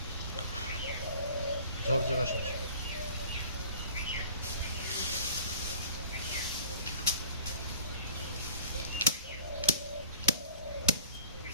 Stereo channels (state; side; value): inverted; both; correlation -0.44